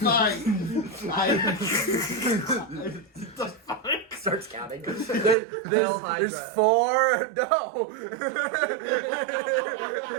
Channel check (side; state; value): left; drops out; at 5.4 s